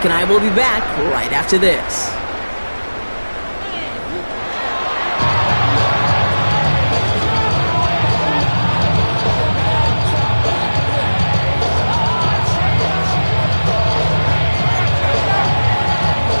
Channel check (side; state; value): both; inverted; correlation -1.00